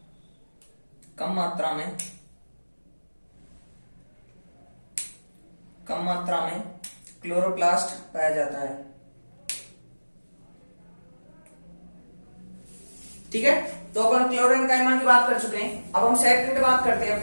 में क्लोरोप्लास्ट पाया जाता है। ठीक है, तो अपन क्लोरेनकाइमा की बात कर चुके हैं। अब हम सेकंड बात करते हैं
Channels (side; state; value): both; inverted; correlation -1.00